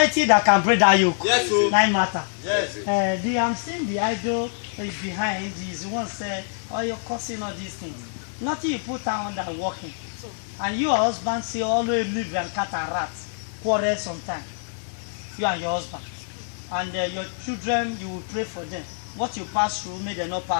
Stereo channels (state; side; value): silent; right; 62 dB below the other